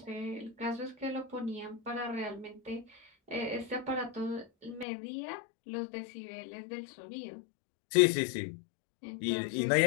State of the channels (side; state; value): right; drops out; at 4.9 s